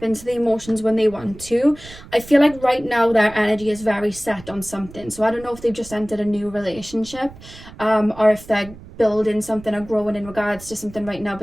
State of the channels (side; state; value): right; noise; rumble, 18 dB below the sound